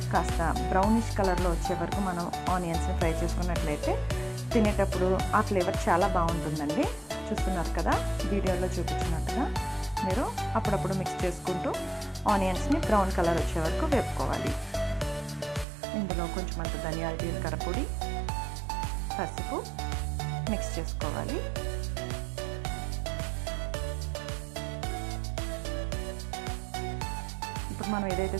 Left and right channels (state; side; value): drops out; left; at 15.7 s